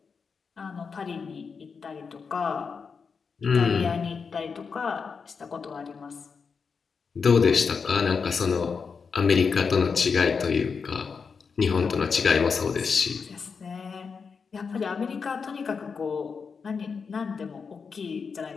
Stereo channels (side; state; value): right; quieter; 5.5 dB